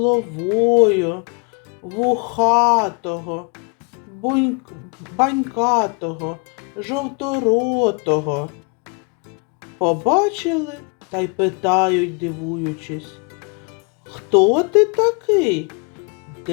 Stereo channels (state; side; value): quieter; right; 33.4 dB